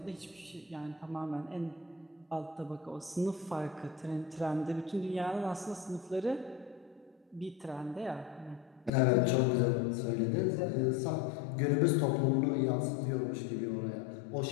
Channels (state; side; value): drops out; right; at 8.9 s